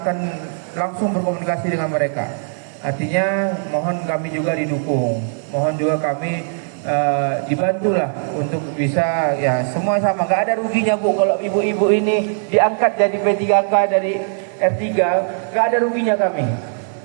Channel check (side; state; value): left; silent; digital silence